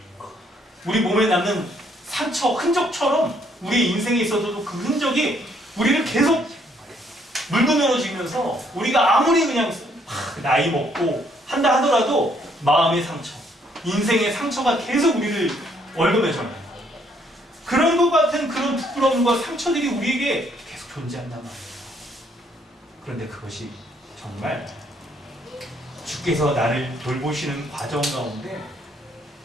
우리 몸에 남는 상처, 흔적처럼 우리 인생에 있어서도 그 흔적이 우리를 계속 물고 늘어지면서 우리가 아무리 그냥 나이 먹고 한다 하더라도 마음의 상처, 인생의 상처가 계속 우리를 얽어매잖아요. 그런 것 같은 그런 부끄러움과 상처들이 우리에게 계속 존재한단 말이에요. 그런데 그것이 정말 주께서 나를 돌보시는 과정 가운데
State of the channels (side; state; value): both; normal; correlation 0.68